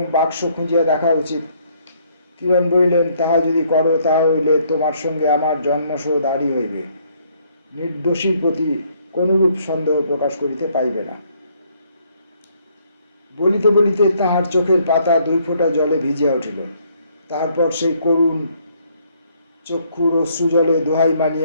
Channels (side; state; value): both; inverted; correlation -0.67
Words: বাক্স খুঁজিয়া দেখা উচিত। কিরণ বলিলেন, তাহা যদি করো তাহা হইলে তোমার সঙ্গে আমার জন্মশোধ আরই হইবে। নির্দোষীর প্রতি কোনরূপ সন্দেহ প্রকাশ করিতে পাইবে না। বলিতে বলিতে তাহার চোখের পাতা 2 ফোঁটা জলে ভিজিয়া উঠিল। তারপর সেই করুণ চক্ষুর অশ্রুজলে দোহাই